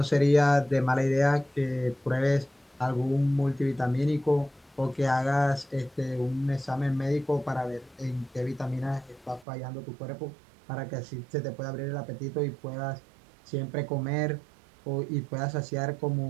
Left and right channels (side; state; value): left; drops out; at 9.5 s